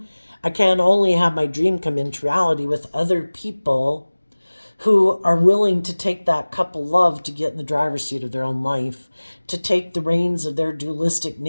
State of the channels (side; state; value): both; inverted; correlation -1.00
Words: I can only have my dream come into reality with other people who are willing to take that cup of love to get in the driver's seat of their own life, to take the reins of their dualistic